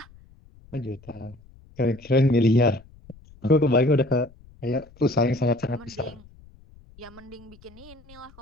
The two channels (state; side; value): noise; left; rumble, 24 dB below the sound